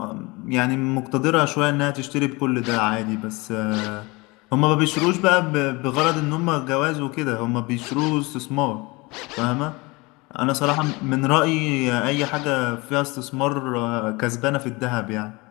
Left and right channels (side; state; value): right; quieter; 24.8 dB